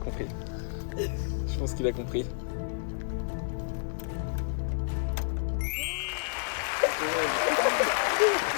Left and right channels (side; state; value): right; silent; 58 dB below the other